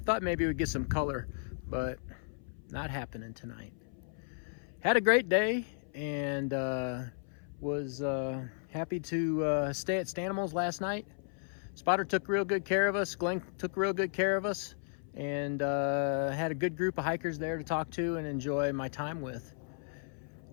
maybe we'd get some color, but not happening tonight. Had a great day, and was happy to stay at Stanimals last night. Spotter took real good care of us, Glenn took real good care of us, and had a good group of hikers there to talk to and enjoy my time with.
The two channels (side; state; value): right; silent; 55 dB below the other